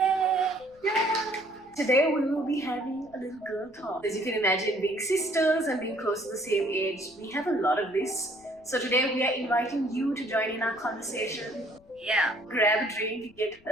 Today we will be having a little girl talk. As you can imagine, being sisters and being close to the same age, we have a lot of this. So today we are inviting you to join in our conversation. Yeah. Grab a drink, get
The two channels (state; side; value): noise; left; rumble, 28 dB below the sound